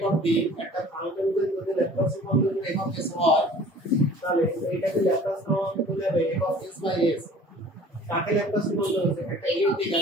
অফ d একটা ফাংশনের যদি ল্যাপ্লাস রূপান্তর f অফ s হয় তাহলে এইটাকে ল্যাপ্লাস রূপান্তর করলে হবে f of s by s কাকে ল্যাপ্লাস রূপান্তর হচ্ছে একটা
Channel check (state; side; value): normal; both; correlation 0.48